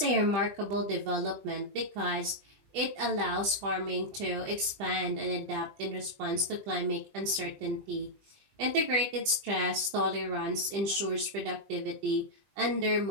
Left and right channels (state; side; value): late; left; 20 ms